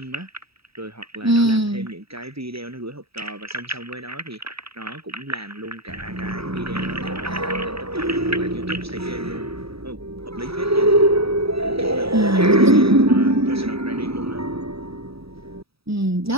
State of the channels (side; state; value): left; late; 0.77 ms